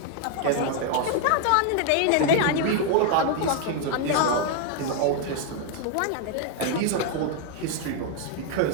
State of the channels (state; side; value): different; both; correlation 0.00